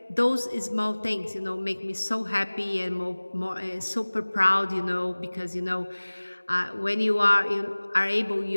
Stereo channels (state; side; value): inverted; both; correlation -1.00